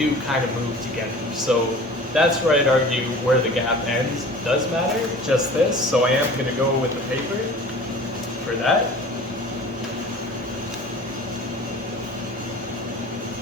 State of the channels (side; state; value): both; normal; correlation 0.42